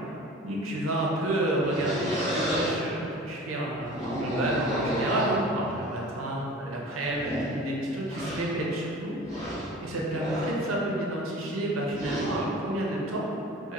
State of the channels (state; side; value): normal; both; correlation 0.40